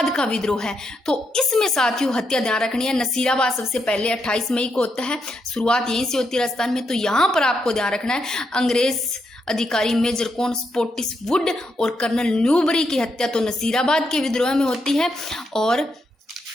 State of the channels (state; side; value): normal; both; correlation 0.81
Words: का विद्रोह है, तो इसमें साथियों हत्या ध्यान रखनी है। नसीराबाद सबसे पहले 28 मई को होता है, शुरुआत यहीं से होती है राजस्थान में। तो यहाँ पर आपको ध्यान रखना है अंग्रेज अधिकारी मेजर कॉन स्पोर्टिस वुड और कर्नल न्यूबरी की हत्या तो नसीराबाद के विद्रोह में होती है। और